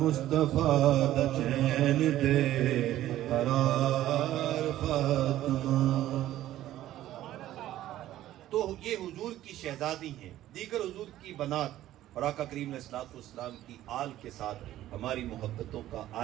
دا چین تے قرار فاطمہ. تو یہ حضور کی شہزادی ہیں. دیگر حضور کی بنات اور آقا کریم علیہ السلام کی آل کے ساتھ ہماری محبتوں کا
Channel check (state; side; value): quieter; left; 13.7 dB